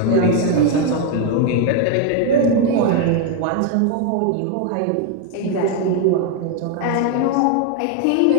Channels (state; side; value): different; both; correlation 0.01